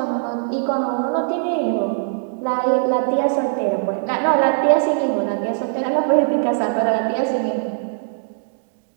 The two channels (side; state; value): left; silent; digital silence